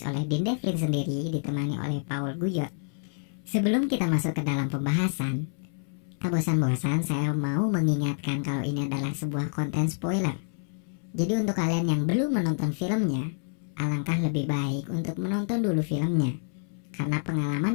oleh Dean Devlin sendiri ditemani oleh Paul Guyot. Sebelum kita masuk ke dalam pembahasan, tak bosan-bosan saya mau mengingatkan kalau ini adalah sebuah konten spoiler. Jadi untuk kalian yang belum menonton filmnya, alangkah lebih baik untuk menonton dulu filmnya, karena pengalaman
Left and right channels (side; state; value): right; silent; 59 dB below the other